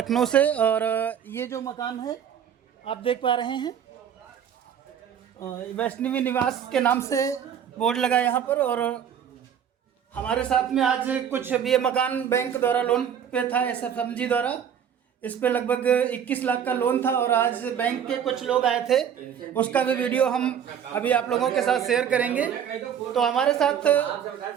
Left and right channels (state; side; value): quieter; left; 8.6 dB